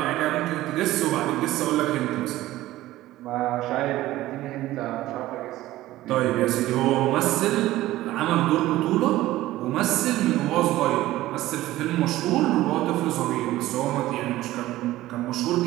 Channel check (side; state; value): left; quieter; 16.0 dB